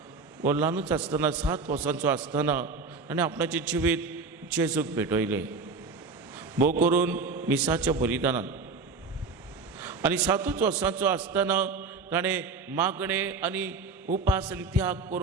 हो ल्हानूच आसतना 7 वर्सांचो आसतना ताणें आपणाचें जिवीत जेजूक भेटयलें, भोव करून मिसाच्या बलिदानान. आनी 7 वर्सांचो आसतना ताणें मागणें आनी उपास आनी त्याग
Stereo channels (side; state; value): left; quieter; 4.4 dB